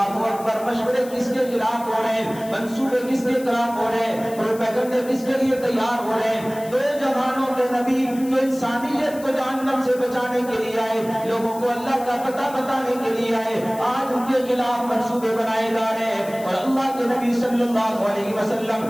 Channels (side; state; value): left; noise; hiss, 18 dB below the sound